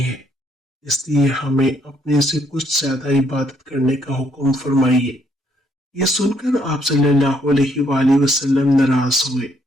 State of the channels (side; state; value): both; normal; correlation 0.70